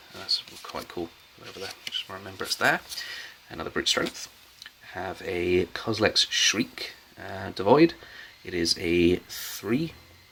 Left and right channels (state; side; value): identical; both; correlation 1.00